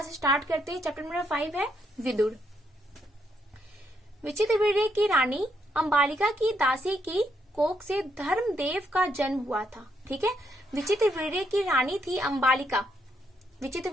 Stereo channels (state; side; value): normal; both; correlation 0.76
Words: स्टार्ट करते हैं। चैप्टर नंबर 5 है विदुर। विचित्रवीर्य की रानी अंबालिका की दासी की कोख से धर्मदेव का जन्म हुआ था। ठीक है, विचित्रवीर्य की रानी थी अंबालिका।